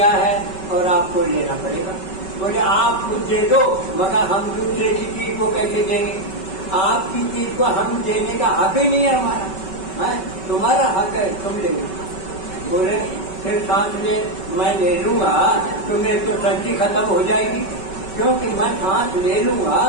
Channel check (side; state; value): right; late; 5.3 ms